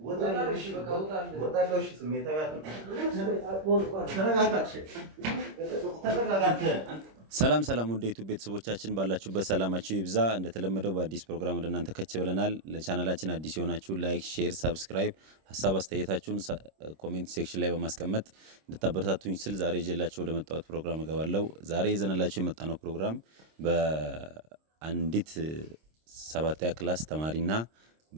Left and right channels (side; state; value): left; late; 26 ms